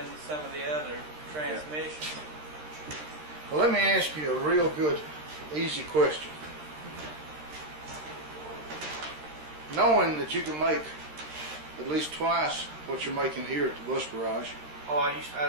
some of the other transmissions. Well, let me ask you a real good, easy question. Knowing that you can make at least twice what you're making here at the bus garage. Oh, I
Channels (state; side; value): late; left; 13 ms